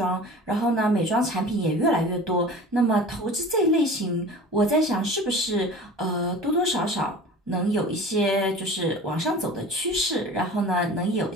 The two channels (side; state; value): both; normal; correlation 0.39